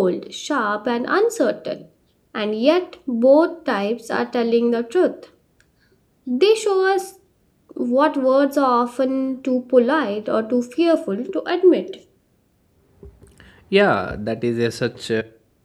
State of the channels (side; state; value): both; identical; correlation 1.00